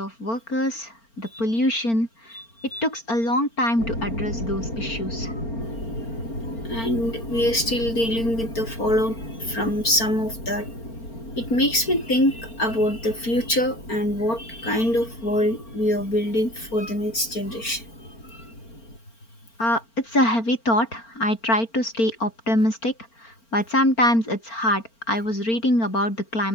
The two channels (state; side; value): late; right; 4.4 ms